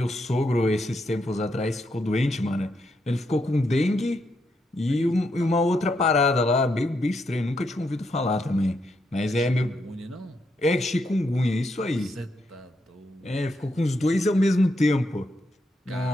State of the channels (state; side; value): normal; both; correlation 0.80